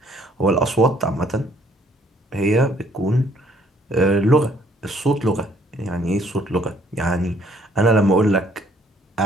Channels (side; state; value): both; normal; correlation 0.63